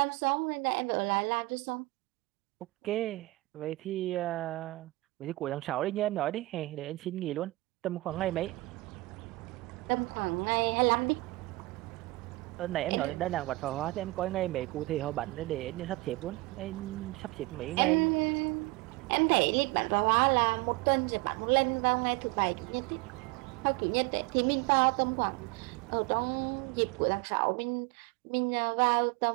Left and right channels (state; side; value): quieter; left; 21.4 dB